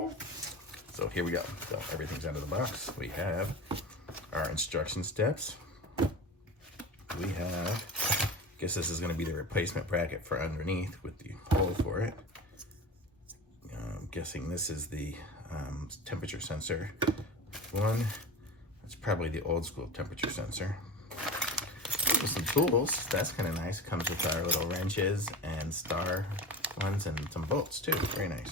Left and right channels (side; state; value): both; normal; correlation 0.32